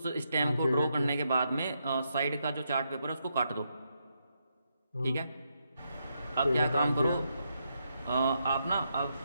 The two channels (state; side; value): inverted; both; correlation -0.81